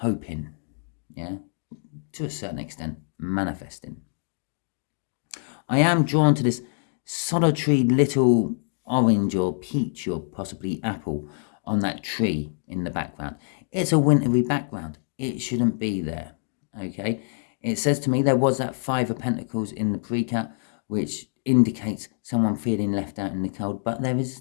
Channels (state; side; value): silent; right; 59 dB below the other